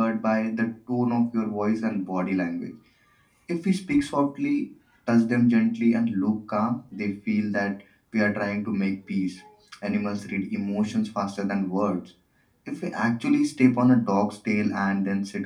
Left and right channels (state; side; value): identical; both; correlation 1.00